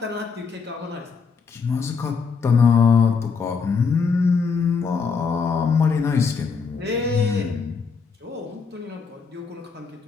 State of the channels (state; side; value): quieter; right; 5.4 dB